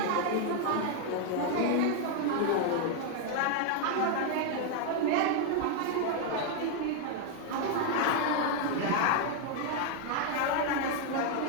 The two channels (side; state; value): both; different; correlation 0.00